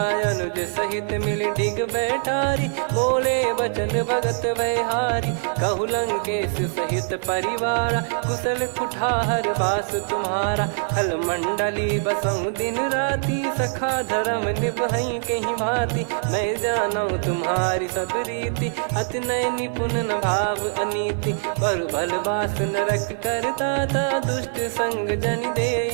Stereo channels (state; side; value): silent; left; digital silence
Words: अनुज सहित मिल डिग बैठारी। बोले बचन भगत वैहारी, कहु लंकेश सहित परिवारा। कुशल कुठार बास तुम्हारा, खल मंडली बसऊं दिन राती। सखा धर्म निभई कहीं भांति, मैं जानू तुम्हारी सब रीति। अति नय निपुण न भाव अनीति, पर भल बास नरक करता था। दुष्ट संग जन दे